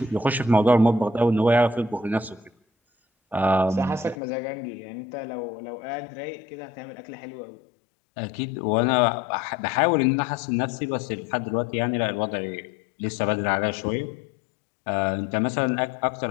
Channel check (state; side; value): drops out; right; at 4.2 s